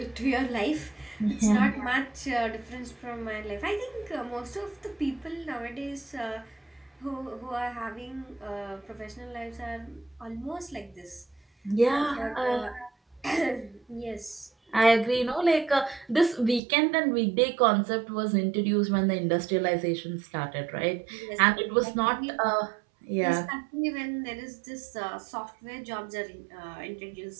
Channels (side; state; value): left; drops out; at 16.6 s